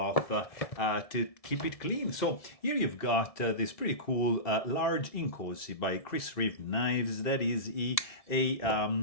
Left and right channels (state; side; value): late; right; 1.7 ms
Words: to keep it clean. So here you've got this pretty cool large Inkosi by Reeve knives. That is a